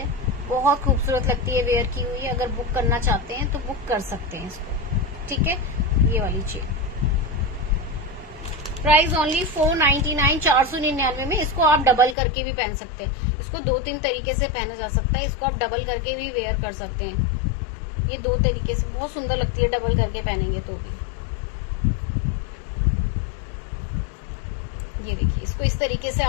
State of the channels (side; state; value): right; drops out; at 12.2 s